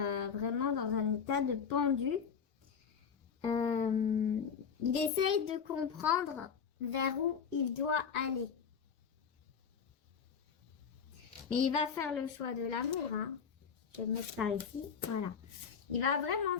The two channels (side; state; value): right; quieter; 6.7 dB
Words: vraiment dans un état de pendu. Il essaye de comprendre vers où il doit aller. Mais il va faire le choix de l'amour. Je vais le mettre par ici. Voilà. Il va vraiment